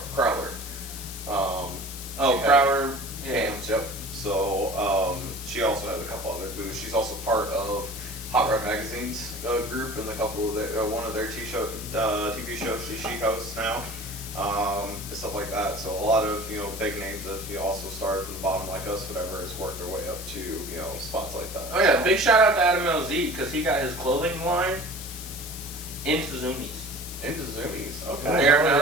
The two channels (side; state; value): left; noise; hiss, 10 dB below the sound